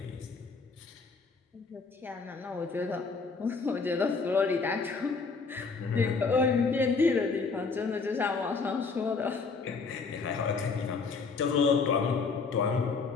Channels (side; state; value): right; quieter; 4.6 dB